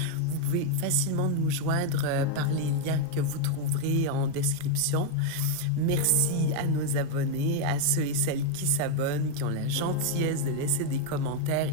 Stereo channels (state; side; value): different; both; correlation 0.01